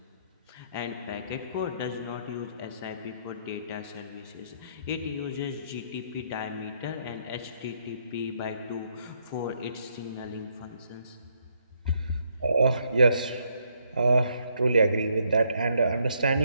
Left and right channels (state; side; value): inverted; both; correlation -0.73